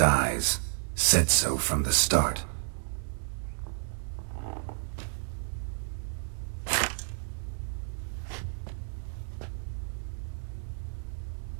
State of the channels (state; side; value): silent; left; digital silence